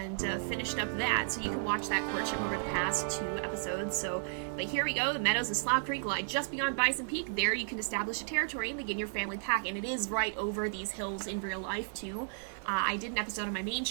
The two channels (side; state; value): left; silent; 55 dB below the other